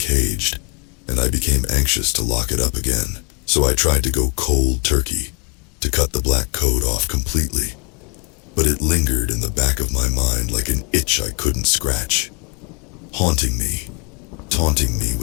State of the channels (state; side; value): quieter; right; 31.2 dB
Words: and I became anxious to lock it up again. So I tried to go cold turkey, to cut the black code off completely. But it lingered in the back of my mind like an itch I couldn't scratch, haunting me, taunting me